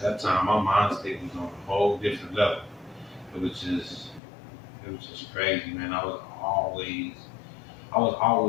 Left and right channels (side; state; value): right; drops out; at 4.2 s